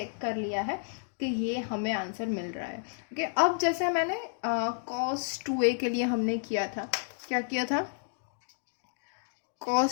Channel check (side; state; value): right; silent; digital silence